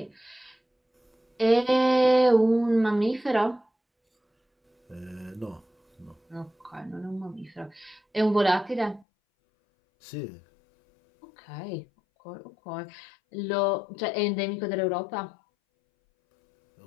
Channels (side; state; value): right; drops out; at 9.1 s